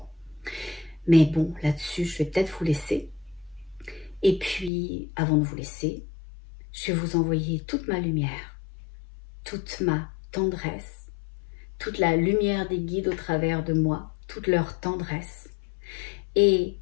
Mais bon, là-dessus, je vais peut-être vous laisser. Et puis, avant de vous laisser, je vais vous envoyer toute ma lumière, toute ma tendresse, toute la lumière des guides au travers de moi, toute leur tendresse et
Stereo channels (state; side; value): drops out; right; at 4.7 s